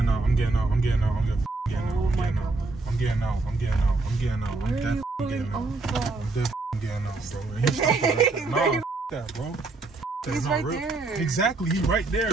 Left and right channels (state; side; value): quieter; left; 3.4 dB